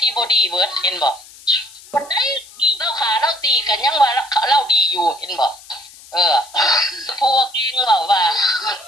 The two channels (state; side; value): noise; left; hiss, 21 dB below the sound